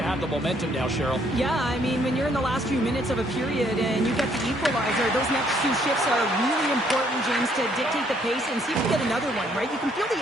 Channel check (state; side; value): normal; both; correlation 0.67